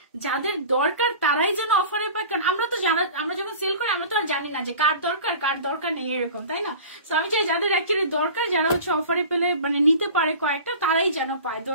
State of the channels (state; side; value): inverted; both; correlation -0.39